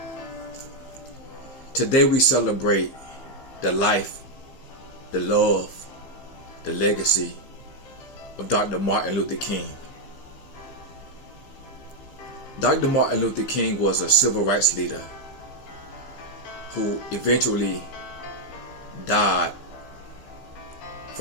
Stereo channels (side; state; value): right; late; 15 ms